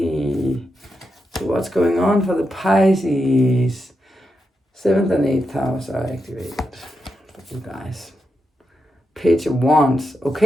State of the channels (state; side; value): normal; both; correlation 0.86